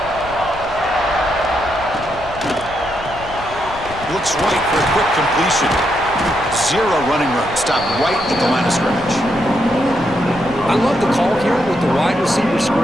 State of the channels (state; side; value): noise; left; rumble, 15 dB below the sound